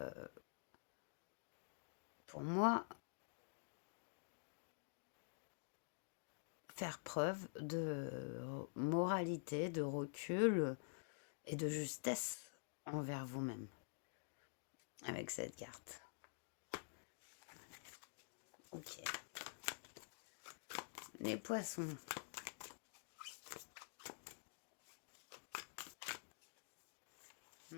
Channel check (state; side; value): silent; right; digital silence